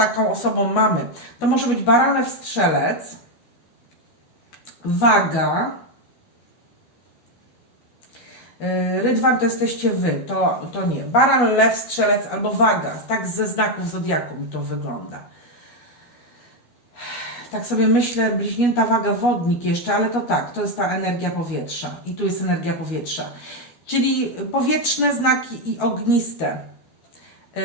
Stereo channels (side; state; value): right; late; 13 ms